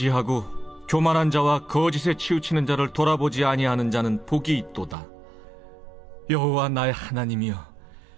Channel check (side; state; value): left; drops out; at 5.0 s